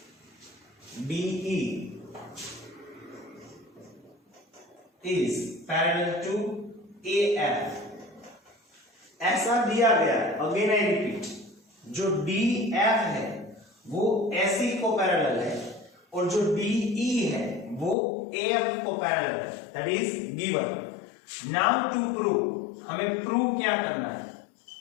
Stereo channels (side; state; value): right; drops out; at 17.9 s